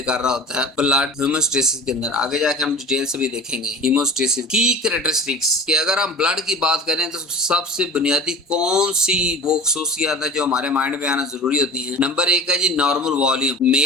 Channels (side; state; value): both; normal; correlation 0.37